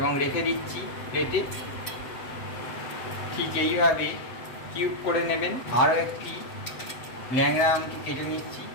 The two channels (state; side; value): late; right; 7.8 ms